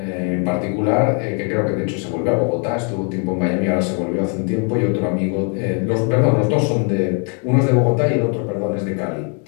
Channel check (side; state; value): right; quieter; 39.2 dB